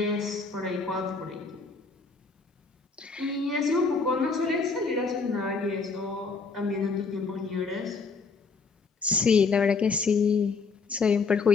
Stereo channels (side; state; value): right; quieter; 4.6 dB